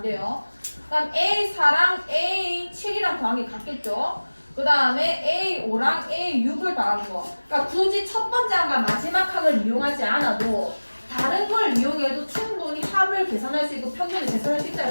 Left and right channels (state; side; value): inverted; both; correlation -1.00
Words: 돼요. 그 다음 A4랑 A7이랑 더한 게 같겠죠. 그 다음에 A5랑 A6을 더한 거. 그러니까 굳이 첫 번째 항과 마지막 항을 이용하지 않아도 다른 걸 이용해도 충분히 합을 계산할 수 있고 평균을 계산할 수